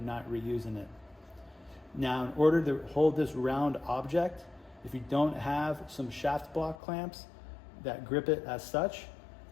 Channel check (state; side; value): drops out; right; at 6.8 s